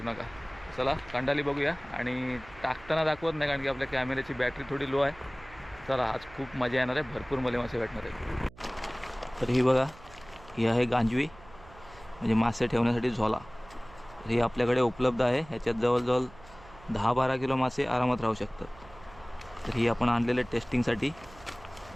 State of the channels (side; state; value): right; noise; hum, 22 dB below the sound